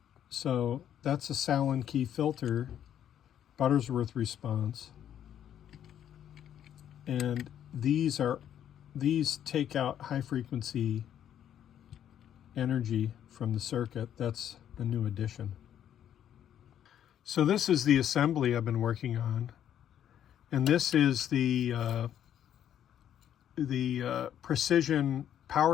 So that's a Sallen-Key filter, Butterworth response, and these take out high frequency energy from the circuit. That's a new addition. So this is the assembly I've been working on, and this is the precision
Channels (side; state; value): right; quieter; 10.1 dB